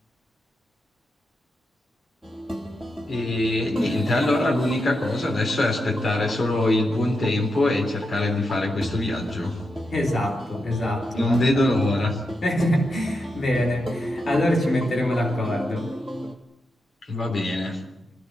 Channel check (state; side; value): normal; both; correlation 0.85